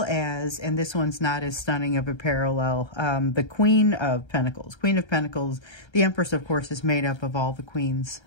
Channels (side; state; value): right; late; 1.3 ms